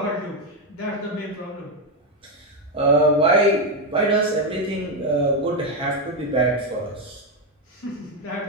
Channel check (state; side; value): normal; both; correlation 0.06